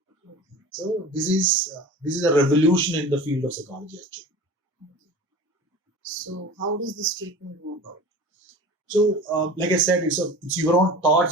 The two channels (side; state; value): both; normal; correlation 0.37